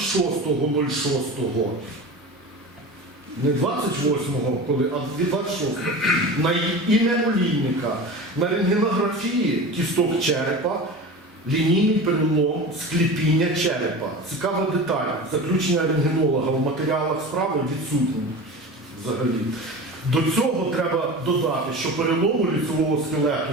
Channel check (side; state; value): both; normal; correlation 0.32